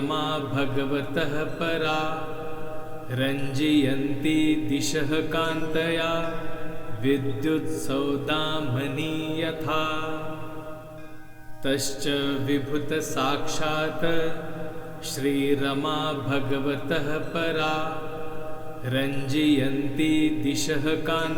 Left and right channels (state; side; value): identical; both; correlation 1.00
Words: भगवतः परा रञ्जयन्ति दिशः कान्तया विद्युत्सौदामनी यथा तश्च विभुतसाक्षात् श्रीरमा भगवतः परा रञ्जयन्ति दिशः